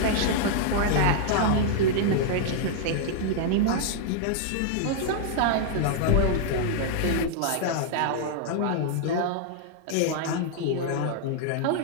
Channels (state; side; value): different; both; correlation -0.01